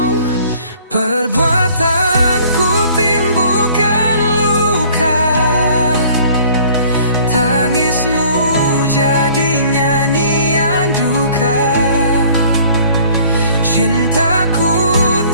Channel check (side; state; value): both; inverted; correlation -0.54